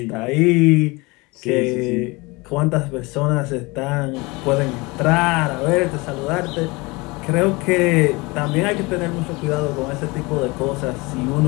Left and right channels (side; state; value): right; quieter; 24.9 dB